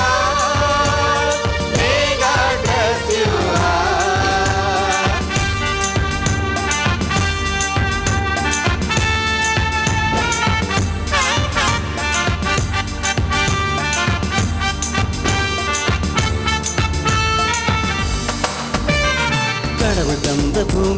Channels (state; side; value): identical; both; correlation 1.00